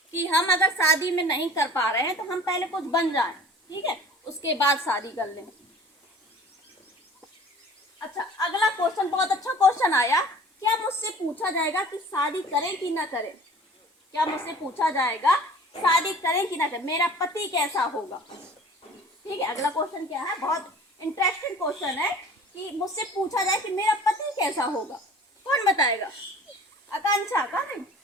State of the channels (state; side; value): normal; both; correlation 0.45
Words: कि हम अगर शादी में नहीं कर पा रहे हैं तो हम पहले कुछ बन जाएं, ठीक है, उसके बाद शादी कर लें। अच्छा, अगला क्वेश्चन बहुत अच्छा क्वेश्चन आया। क्या मुझसे पूछा जाएगा कि शादी करें कि ना करें? क्या मुझसे पूछा जाएगा शादी करें कि ना करें, मेरा पति कैसा होगा? ठीक है, अगला क्वेश्चन क्या है, बहुत इंटरेस्टिंग क्वेश्चन है कि मुझसे पूछा जाए कि मेरा पति कैसा होगा। कौन बताएगा? आकांक्षा का नहीं?